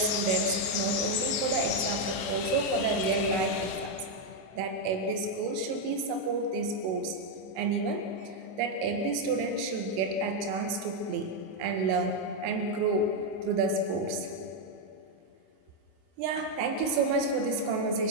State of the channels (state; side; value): late; left; 27 ms